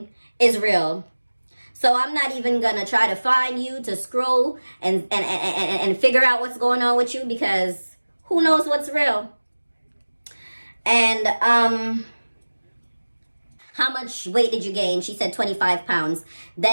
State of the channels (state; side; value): inverted; both; correlation -1.00